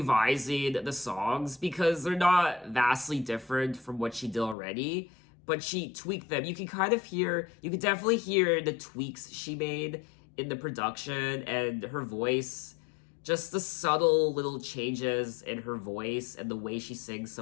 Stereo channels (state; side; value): drops out; right; at 4.5 s